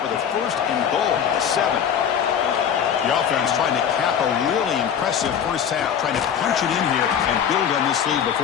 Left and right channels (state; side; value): quieter; right; 8.3 dB